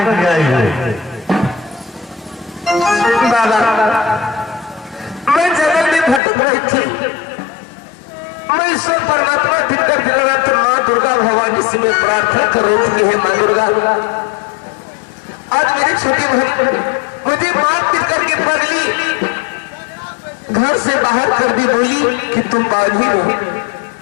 के लिए आई हो? बाबा मैं जंगल में भटक रही थी। मैं ईश्वर परमात्मा दिखकर दिल रहा था, माँ दुर्गा भवानी से मैं प्रार्थना कर रही थी, हे माँ दुर्गा आज मेरी छोटी बहन मुझे मार पीट करके पगली घर से बाहर कर दी, बोली कि तुम बाधी हो।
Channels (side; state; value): right; drops out; at 6.2 s